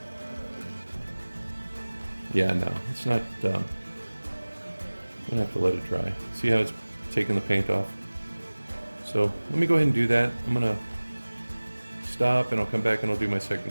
Yeah, no, it's not, I'm gonna have to let it dry. See how it's taking the paint off? So let me go ahead and do that. I'm gonna stop and I'll come back and I'll do my second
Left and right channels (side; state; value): both; inverted; correlation -1.00